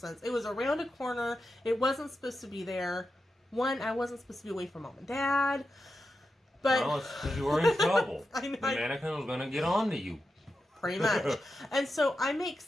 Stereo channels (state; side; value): normal; both; correlation 0.89